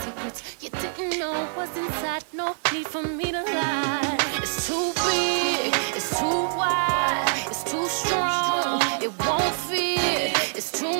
you didn't know was inside. No need for me to lie. It's too big, it's too wide, it's too strong, it won't fit. It's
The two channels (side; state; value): left; silent; 61 dB below the other